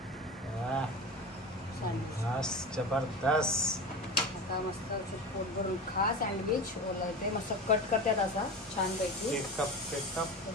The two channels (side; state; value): both; normal; correlation 0.28